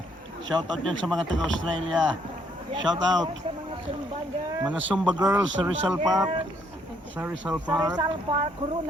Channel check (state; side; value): normal; both; correlation 0.69